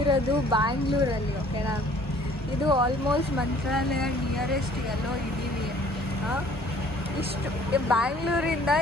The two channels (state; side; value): normal; both; correlation 0.55